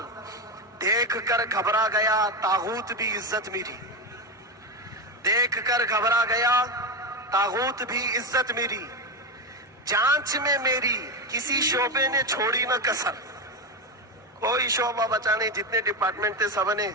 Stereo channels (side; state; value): both; normal; correlation 0.14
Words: دیکھ کر گھبرا گیا طاغوت بھی عزت میری، دیکھ کر گھبرا گیا طاغوت بھی عزت میری۔ جانچ میں میری کسی شعبے نے چھوڑی نہ کسر، کوئی شعبہ بچا نہیں، جتنے ڈپارٹمنٹ تھے سب نے